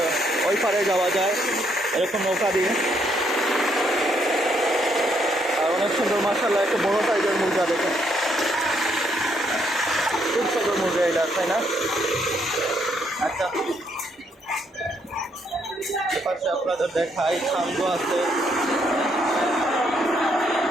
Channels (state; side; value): normal; both; correlation 0.72